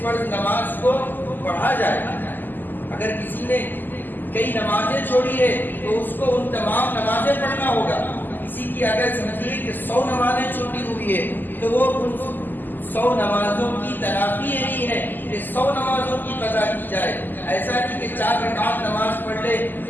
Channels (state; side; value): late; right; 0.089 ms